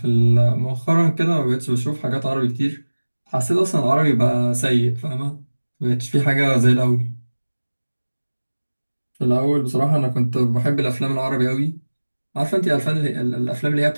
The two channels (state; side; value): inverted; both; correlation -1.00